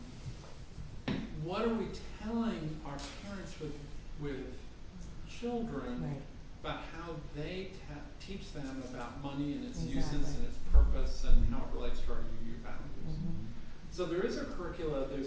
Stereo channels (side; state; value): both; identical; correlation 1.00